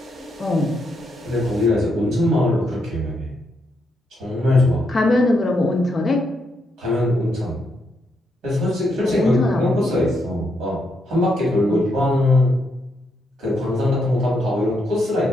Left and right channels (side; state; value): both; normal; correlation 0.79